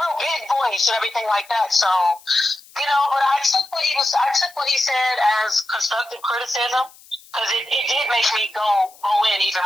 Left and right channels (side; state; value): left; noise; hiss, 24 dB below the sound